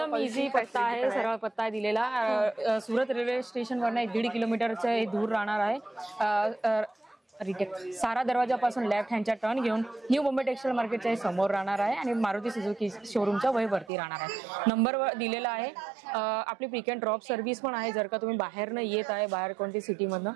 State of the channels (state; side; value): drops out; left; at 13.9 s